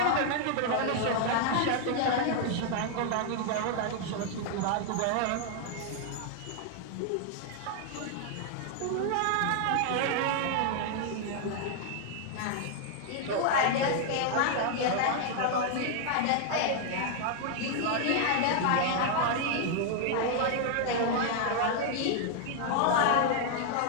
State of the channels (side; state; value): both; different; correlation 0.00